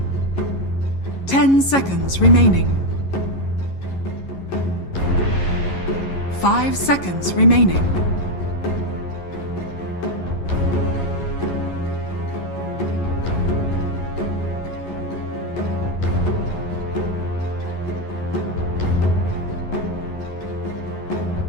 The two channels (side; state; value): right; late; 11 ms